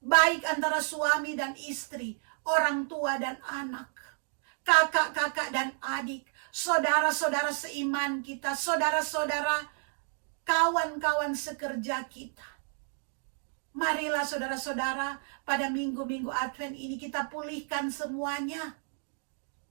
Baik antara suami dan istri, orang tua dan anak, kakak-kakak dan adik, saudara-saudara seiman kita, saudara-saudara, kawan-kawan sekerja kita. Marilah saudara-saudara, pada minggu-minggu Advent ini kita pulihkan semuanya.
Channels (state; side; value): silent; left; 57 dB below the other